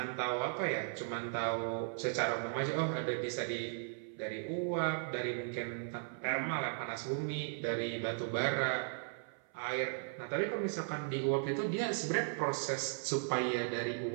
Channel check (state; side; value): silent; left; 53 dB below the other